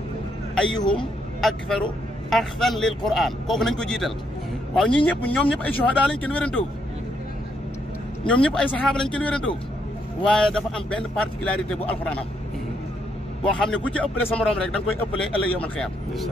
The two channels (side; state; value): both; normal; correlation 0.75